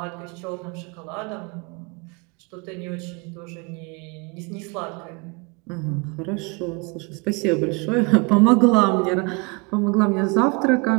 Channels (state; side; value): quieter; left; 29.7 dB